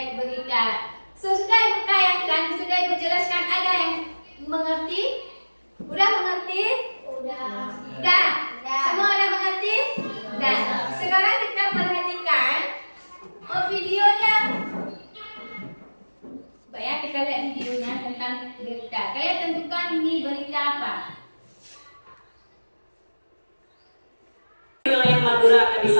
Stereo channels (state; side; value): inverted; both; correlation -1.00